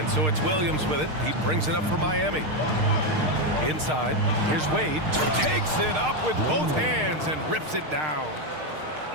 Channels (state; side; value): late; left; 6.5 ms